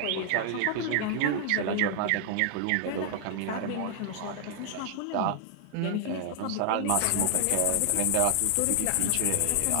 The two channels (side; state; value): both; different; correlation 0.00